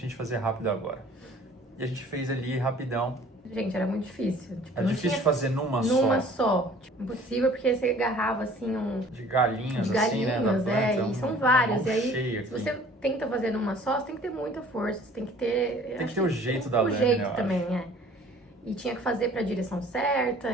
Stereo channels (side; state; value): both; normal; correlation 0.51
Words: gente fazer rápido agora. E a gente fez ali rapidão. Gente, era muito difícil. Tipo, É difícil de fazer numa só. Tipo, impossível, porque você agarrava assim de galinhos, assim, né? E são vários. E aí, se aqui. você tenta fazer numa só, você tem que ter muita força, você tem que ter... Tem que ter o jeito da lâmina, o jeito também, E tinha que fazer pra direção certa,